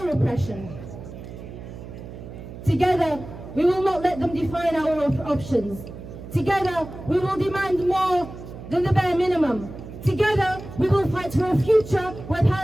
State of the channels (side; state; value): right; noise; hum, 13 dB below the sound